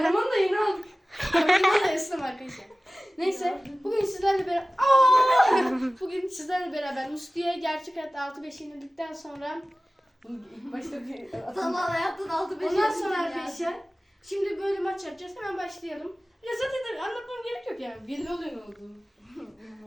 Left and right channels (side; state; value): both; normal; correlation 0.97